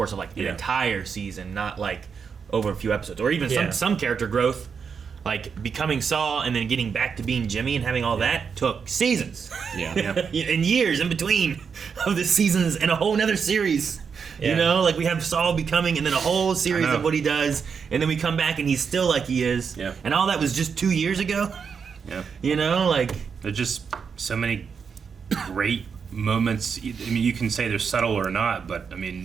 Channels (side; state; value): left; quieter; 6.2 dB